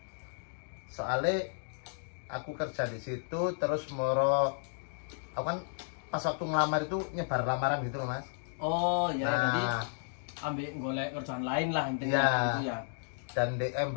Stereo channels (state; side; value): silent; right; digital silence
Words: Soalnya aku kerja di situ terus moro aku kan pas waktu ngelamar itu nyebar lamaran gitu loh Mas. Oh ya, jadi ambil golek kerjaan lain lah intinya gitu ya. Dan di